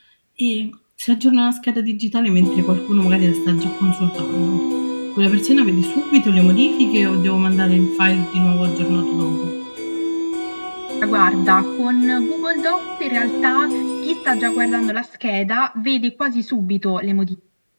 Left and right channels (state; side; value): inverted; both; correlation -1.00